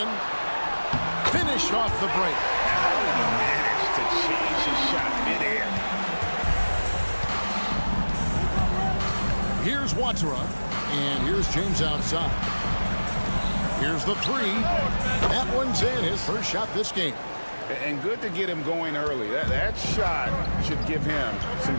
Finish off the break. How did he manage to change his shot midair? Here's Watsura. And here's James outside. Here's the 3. That one's in. His first shot this game. And good to get him going early. That shot should give him some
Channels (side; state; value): both; inverted; correlation -1.00